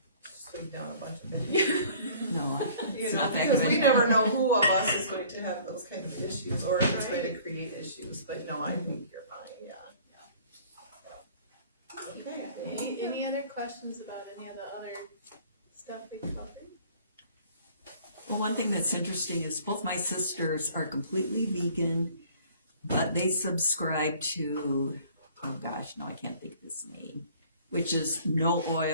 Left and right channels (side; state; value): both; inverted; correlation -0.52